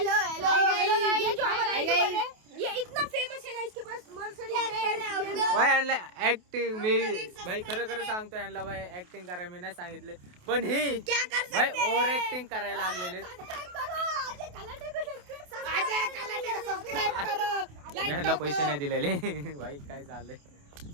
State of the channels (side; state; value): left; late; 28 ms